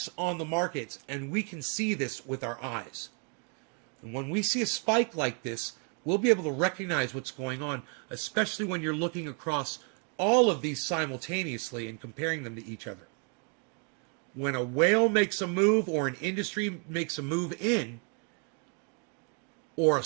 on the markets, and we can see this with our eyes. And when we see a spike like this, we'll be able to recognize what's going on, especially when you're looking across all of these simultaneously and comparing them to each other. When a whale makes a move or an industry makes a move in, or a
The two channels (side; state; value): left; quieter; 38.9 dB